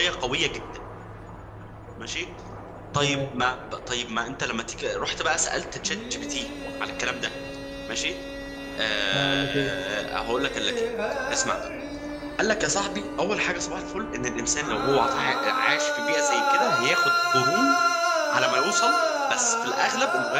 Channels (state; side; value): identical; both; correlation 1.00